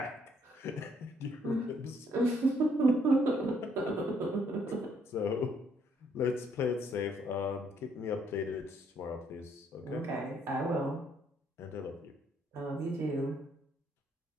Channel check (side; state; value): both; normal; correlation 0.69